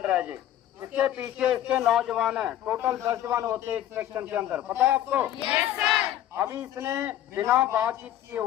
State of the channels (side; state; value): right; quieter; 12.1 dB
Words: है जी। इसके पीछे इसके 9 जवान है, टोटल 10 जवान होते हैं एक सेक्शन के अंदर, पता है आपको? Yes sir. अभी इसने बिना बातचीत किए